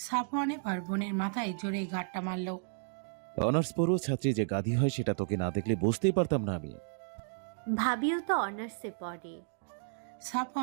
এবার বোনের মাথায় জোরে গাঁটটা মারল। অনার্স পড়ুয়া ছাত্রী যে গাধি হয় সেটা তোকে না দেখলে বুঝতেই পারতাম না আমি। ভাবিও তো অনার্সে পড়ে।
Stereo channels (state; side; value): silent; left; digital silence